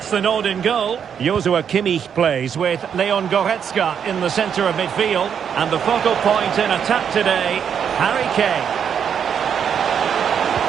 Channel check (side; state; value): left; quieter; 7.8 dB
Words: the nod in goal. Joshua Kimmich plays with Leon Goretzka in the centre of midfield. And the focal point in attack today, Harry Kane.